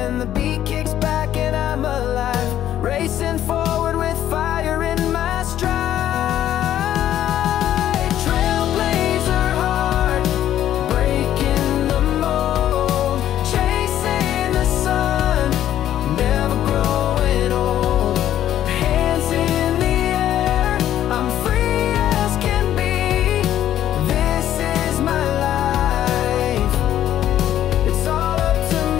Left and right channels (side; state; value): right; quieter; 11.6 dB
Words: the beat kicks back and I'm alive, racing forward with fire in my stride. Trailblazer heart, breaking the mold, chasing the sun, never growing old. Hands in the air, I'm free as can be. This is my life, it's all up to